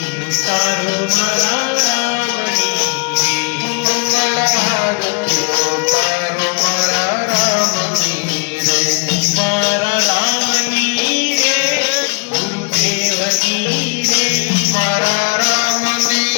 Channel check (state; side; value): quieter; right; 34.5 dB